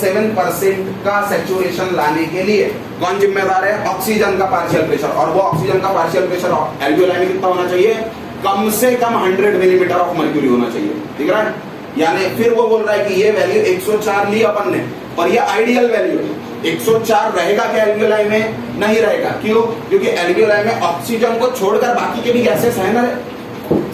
का सैचुरेशन लाने के लिए कौन जिम्मेदार है? ऑक्सीजन का पार्शियल प्रेशर। और वो ऑक्सीजन का पार्शियल प्रेशर एल्वियोलाई में कितना होना चाहिए? कम से कम 100 मिलीमीटर ऑफ मर्क्यूरी होना चाहिए। ठीक है? यानी फिर वो बोल रहा है कि ये वैल्यू 104 ली अपन ने, पर ये आइडियल वैल्यू है। 104 रहेगा क्या एल्वियोलाई में? नहीं रहेगा। क्यों? क्योंकि एल्वियोलाई में ऑक्सीजन को छोड़कर बाकी के भी गैसेस है ना,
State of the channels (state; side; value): identical; both; correlation 1.00